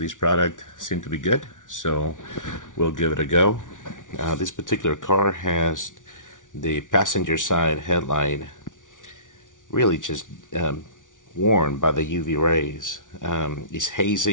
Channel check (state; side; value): late; right; 0.87 ms